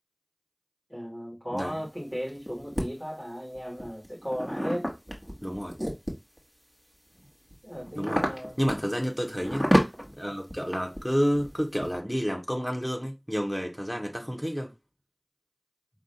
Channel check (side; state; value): both; identical; correlation 1.00